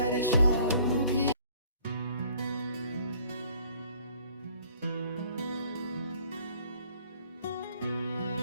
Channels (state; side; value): inverted; both; correlation -0.58